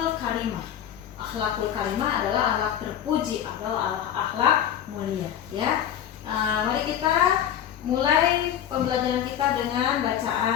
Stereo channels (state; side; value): quieter; right; 10.1 dB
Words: karimah. Akhlakul karimah adalah akhlak terpuji atau akhlak mulia ya. Mari kita mulai pembelajaran kita dengan